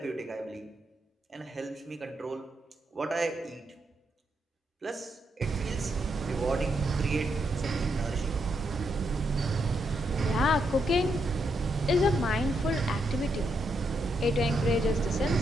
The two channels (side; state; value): both; normal; correlation 0.80